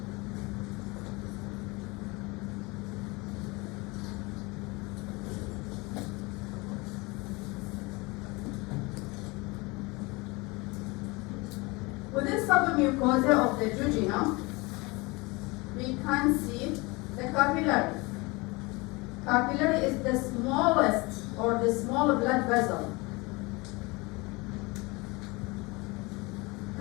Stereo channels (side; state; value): right; quieter; 25.1 dB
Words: Within submucosa of the jejunum, we can see the capillary. Capillary is the smallest or the small blood vessel.